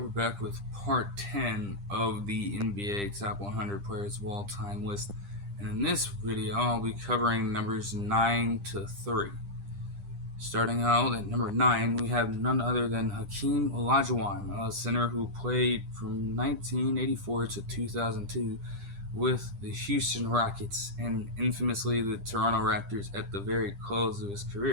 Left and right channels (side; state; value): left; late; 10 ms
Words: back with part 10 of the NBA Top 100 Players of All Time list. And in this video, I'll be covering numbers 9 to 3. Starting out at number 9, we have none other than Hakeem Olajuwon, a center who played from 1984 to 2002 with the Houston Rockets and infamously the Toronto Raptors at the very close of his